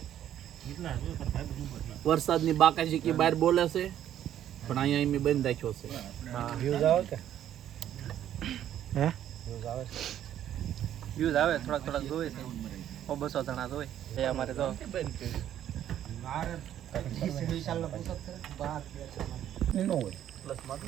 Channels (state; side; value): quieter; left; 11.0 dB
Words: વરસાદની બાકાજી કે બહાર બોલે છે પણ અહીંયા એમ બંધ રાખ્યો છે. હા, વ્યૂઝ આવે કે હે વ્યૂઝ આવે છે. વ્યૂઝ આવે થોડાક જોવે છે. 200 જણા જોવે એ અમારે તો.